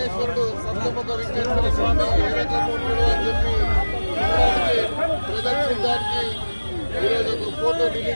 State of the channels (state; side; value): inverted; both; correlation -1.00